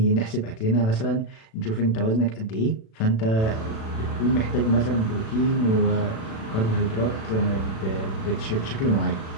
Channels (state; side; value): late; right; 36 ms